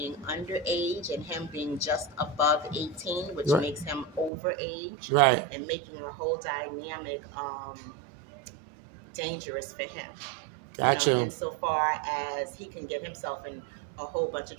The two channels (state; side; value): drops out; left; at 4.3 s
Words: underage and him being just above 18, which right. makes him overage, right. and making a whole dynamic dangerous for him. Gotcha. Insofar as he can get himself in a whole bunch of